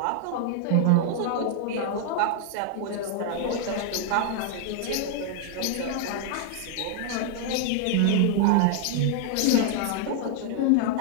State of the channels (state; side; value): different; both; correlation 0.00